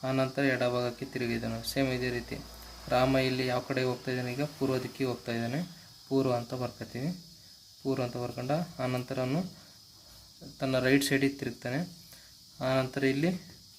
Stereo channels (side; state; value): both; identical; correlation 1.00